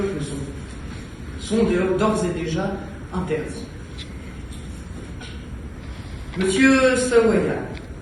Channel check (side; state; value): both; identical; correlation 1.00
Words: sont d'ores et déjà interdits. Monsieur Sawaya,